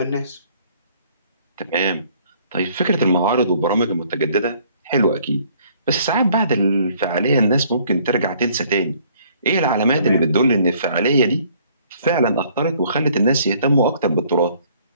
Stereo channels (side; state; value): both; inverted; correlation -0.60